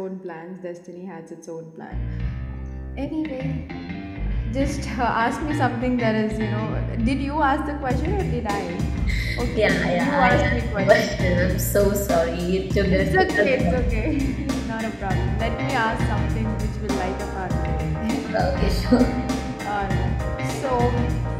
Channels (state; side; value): identical; both; correlation 1.00